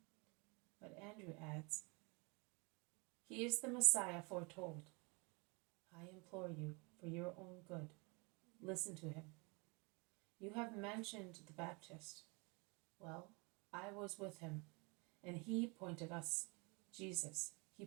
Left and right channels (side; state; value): left; quieter; 30.2 dB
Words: But Andrew adds, He is the Messiah foretold. I implore you, for your own good, listen to him. You have mentioned the Baptist. Well, I was with him, and he pointed to us Jesus,